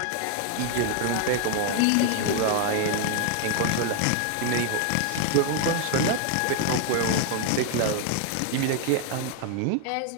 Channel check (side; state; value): both; different; correlation 0.00